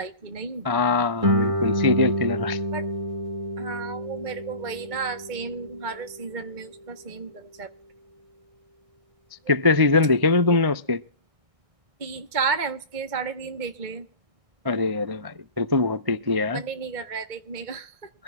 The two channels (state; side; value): late; left; 1.6 ms